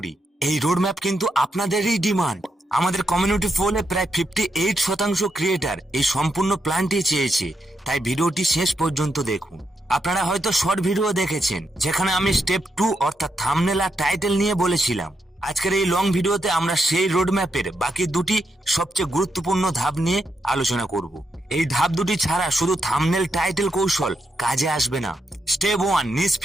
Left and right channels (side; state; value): both; normal; correlation 0.82